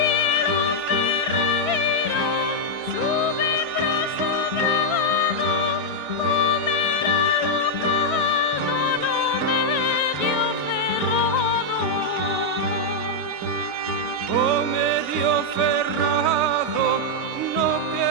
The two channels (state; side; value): late; left; 3.0 ms